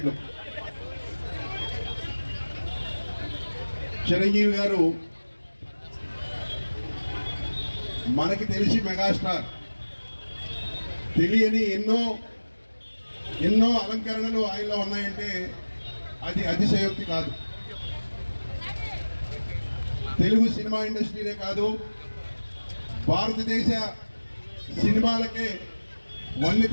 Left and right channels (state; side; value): inverted; both; correlation -1.00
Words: చిరంజీవి గారు మనకి తెలిసి మెగాస్టార్, తెలియని ఎన్నో అలంకరణలు ఆయనలో ఉన్నాయంటే అది అతిశయోక్తి కాదు. తెలుగు సినిమా ఇండస్ట్రీనే కాదు, భారతదేశ సినిమాలకే వన్నె